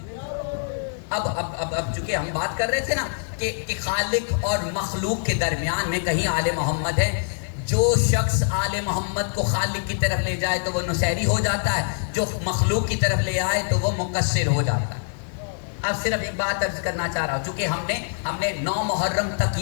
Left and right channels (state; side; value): silent; right; 60 dB below the other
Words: اب چونکہ ہم بات کر رہے تھے نا کہ خالق اور مخلوق کے درمیان میں کہیں آل محمد ہے، جو شخص آل محمد کو خالق کی طرف لے جائے تو وہ نصیری ہو جاتا ہے، جو مخلوق کی طرف لے آئے تو وہ مقصر ہو جاتا ہے۔ اب صرف ایک بات عرض کرنا چاہ رہا ہوں، چونکہ ہم نے 9 محرم تک